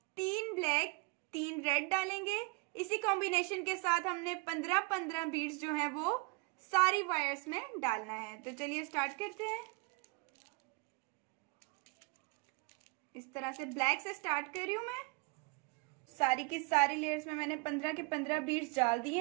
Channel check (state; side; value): quieter; left; 29.7 dB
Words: 3 ब्लैक 3 रेड डालेंगे। इसी कॉम्बिनेशन के साथ हमने 15-15 बीड्स जो हैं वो सारी वायर्स में डालना है। तो चलिए स्टार्ट करते हैं। इस तरह से ब्लैक से स्टार्ट कर रही हूं मैं। सारी की सारी लेयर्स में मैंने 15 के 15 बीड्स डाल दिए